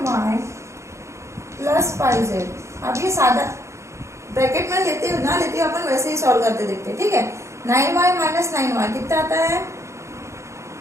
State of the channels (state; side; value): late; left; 0.14 ms